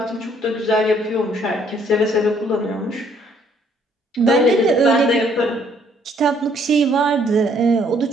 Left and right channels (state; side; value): normal; both; correlation 0.65